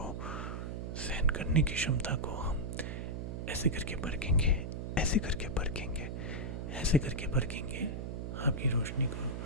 सहन करने की क्षमता को हम ऐसे करके परखेंगे, ऐसे करके परखेंगे, ऐसे करके परखेंगे। आपकी रोशनी को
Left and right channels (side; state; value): right; noise; hum, 5 dB below the sound